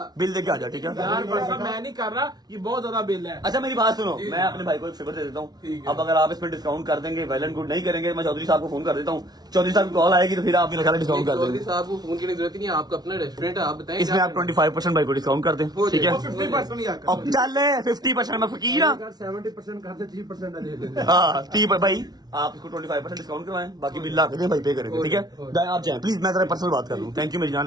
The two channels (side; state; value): left; late; 0.19 ms